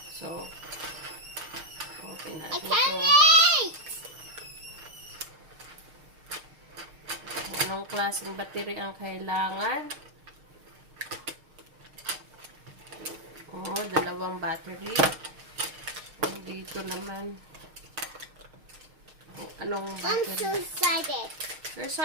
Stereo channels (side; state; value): left; late; 6.5 ms